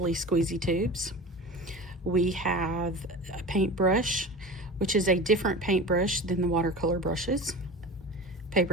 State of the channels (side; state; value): both; normal; correlation 0.32